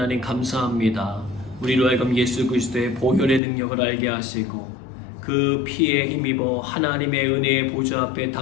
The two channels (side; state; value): right; drops out; at 3.4 s